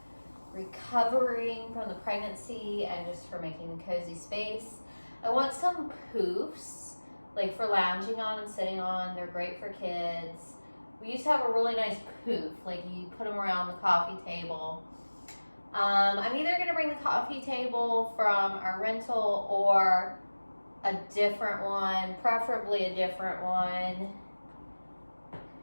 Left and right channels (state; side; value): inverted; both; correlation -1.00